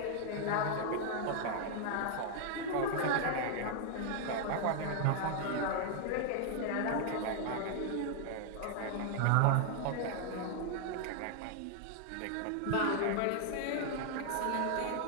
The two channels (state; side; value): different; both; correlation 0.00